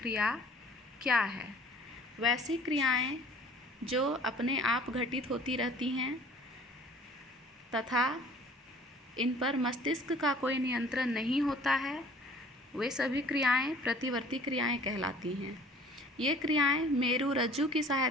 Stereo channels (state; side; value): normal; both; correlation 0.51